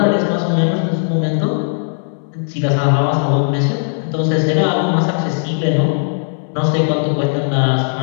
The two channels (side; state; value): right; silent; digital silence